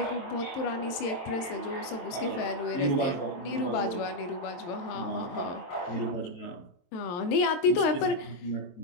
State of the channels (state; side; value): late; right; 23 ms